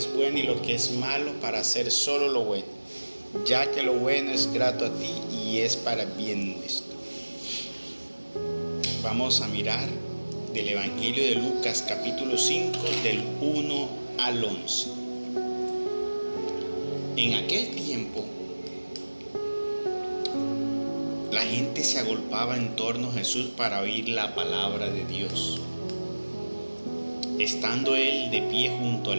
bueno y lo que es malo para hacer solo lo bueno, ya que lo bueno es grato a ti y es para bien nuestro. Vamos a mirar del Evangelio de Lucas capítulo 5 del 1 al 11. En aquel tiempo la gente se agolpaba en torno a Jesús para oír la palabra de Dios. Estando él de pie junto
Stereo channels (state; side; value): inverted; both; correlation -1.00